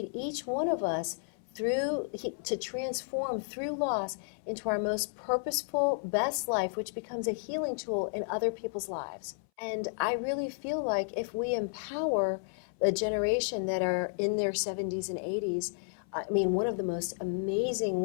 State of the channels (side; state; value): right; silent; 56 dB below the other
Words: each one of us to transform through loss into our most purposeful, best life, which becomes a healing tool in other people's lives. And I really feel like if we empower the generation that are in their 70s and 80s, I mean, one of the most amazing